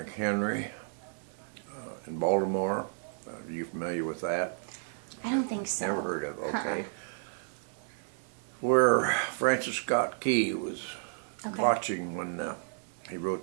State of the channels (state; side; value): silent; left; 56 dB below the other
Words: in Baltimore. Are you familiar with that? I don't think so. Never heard of it. Okay. Where Francis Scott Key was Okay. watching when he wrote